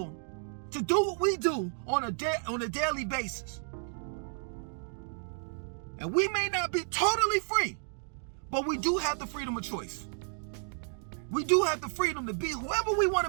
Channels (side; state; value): left; silent; 56 dB below the other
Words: to do what we do on a daily basis. And we may not be totally free, but we do have the freedom of choice. We do have the freedom to be whoever we want